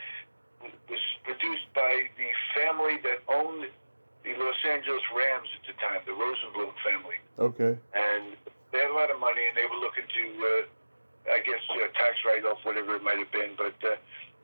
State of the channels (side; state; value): both; inverted; correlation -1.00